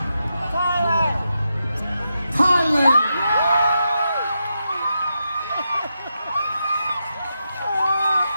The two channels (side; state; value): both; inverted; correlation -0.86